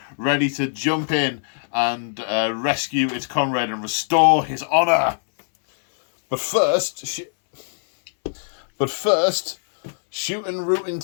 ready to jump in and rescue its comrade and restore his honour. But first, shooting, rooting,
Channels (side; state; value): right; silent; digital silence